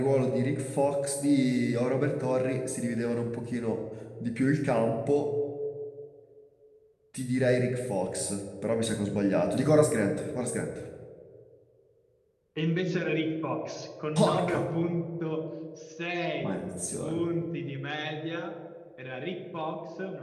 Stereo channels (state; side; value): identical; both; correlation 1.00